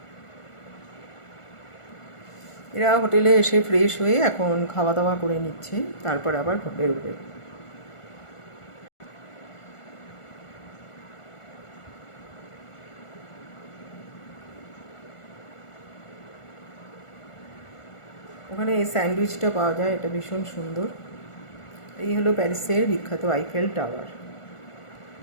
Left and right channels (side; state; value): right; late; 1.4 ms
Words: এরা হোটেলে এসে ফ্রেশ হয়ে এখন খাওয়া দাওয়া করে নিচ্ছে, তারপর আবার বেরোবে। ওখানে এই স্যান্ডউইচটা পাওয়া যায়, এটা ভীষণ সুন্দর। এই হলো প্যারিসের বিখ্যাত আইফেল টাওয়ার।